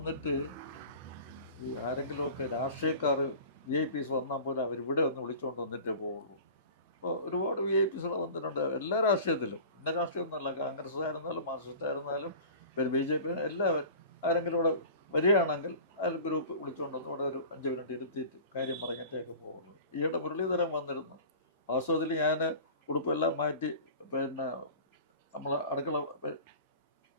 ഈ ആരെങ്കിലുമൊക്കെ രാഷ്ട്രീയക്കാർ VIPs വന്നാൽ പോലും അവരിവിടെ ഒന്ന് വിളിച്ചുകൊണ്ട് വന്നിട്ടേ പോവുള്ളൂ. അപ്പോൾ ഒരുപാട് VIPs വന്നിട്ടുണ്ട് എല്ലാ രാഷ്ട്രീയത്തിലും. ഇന്ന രാഷ്ട്രീയമൊന്നുമല്ല, കോൺഗ്രസ് ആയിരുന്നാലും മാർക്സിസ്റ്റ് ആയിരുന്നാലും പിന്നെ BJP, എല്ലാവരും ആരെങ്കിലും ഇവിടെ വരികയാണെങ്കിൽ അതിൽ ഗ്രൂപ്പ് വിളിച്ചുകൊണ്ട് വന്ന് ഇവിടെ ഒരു 5 മിനിറ്റ് ഇരുത്തിയിട്ട് കാര്യം പറഞ്ഞിട്ടേക്ക് പോവുള്ളൂ. ഈയിടെ മുരളീധരൻ വന്നിരുന്നു. വാസ്തവത്തിൽ ഞാൻ ഉടുപ്പെല്ലാം മാറ്റി പിന്നെ നമ്മളെ അടുക്കള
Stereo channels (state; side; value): inverted; both; correlation -0.40